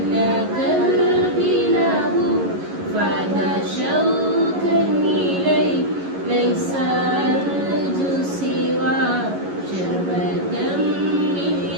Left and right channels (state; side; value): late; left; 11 ms